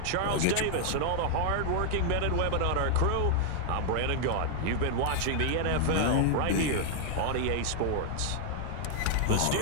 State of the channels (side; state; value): both; different; correlation 0.00